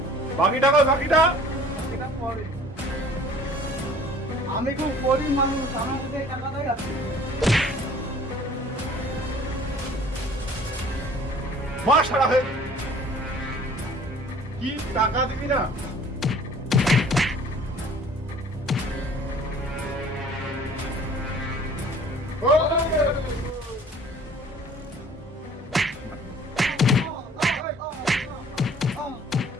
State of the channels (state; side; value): normal; both; correlation 0.51